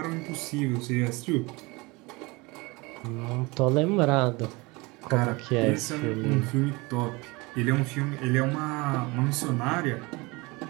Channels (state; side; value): quieter; left; 24.8 dB